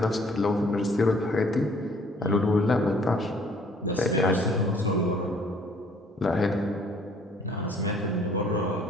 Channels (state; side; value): normal; both; correlation 0.59